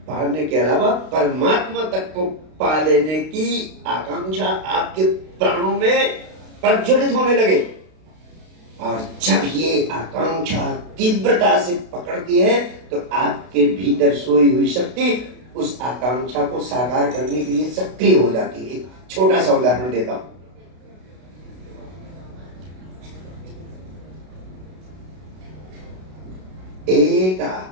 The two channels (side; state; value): left; late; 32 ms